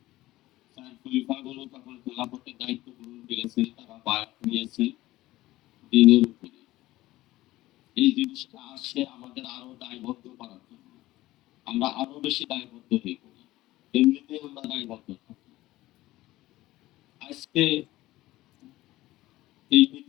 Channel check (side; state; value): right; quieter; 17.0 dB